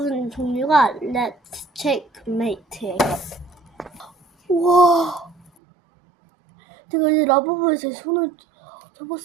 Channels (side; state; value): left; drops out; at 5.5 s